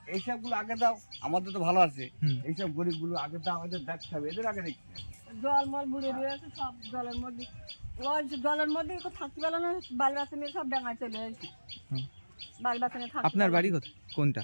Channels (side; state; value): both; inverted; correlation -1.00